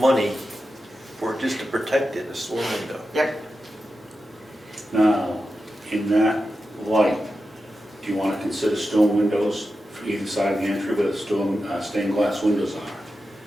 for just to protect it, a storm window. Yep. Now, in that light, do you want to consider stone windows for either side of the entry where the stained glass windows are?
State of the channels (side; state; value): both; normal; correlation 0.91